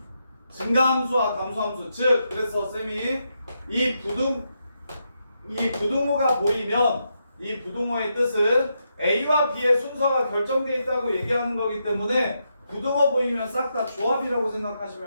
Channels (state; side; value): inverted; both; correlation -0.82